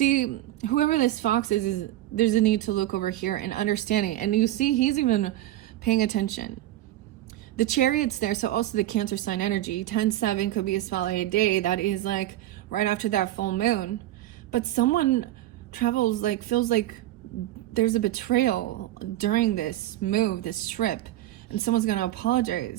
whoever this fox is there's a need to look over here and understanding. And you see, he's even paying attention. The Chariot's there, so also the Cancer sign energy. 10-7 could be a spotlight day. That is like right after that full moon. But someone travels, like, feels like there's a betrayal during this move, this trip, and someone's going to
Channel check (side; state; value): left; quieter; 14.5 dB